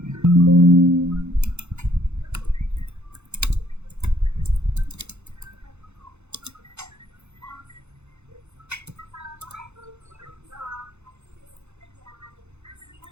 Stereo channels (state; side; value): late; left; 0.82 ms